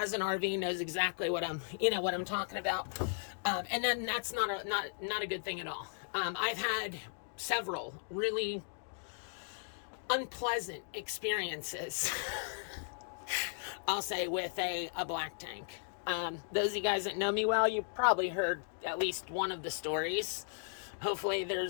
an RV knows exactly what I'm talking about. And then that's not a good thing at all. I've had several really unpleasant experiences, I'll say, with a black tank. Those of you guys that know me well, you probably heard at least one of the stories. Hopefully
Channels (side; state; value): right; silent; digital silence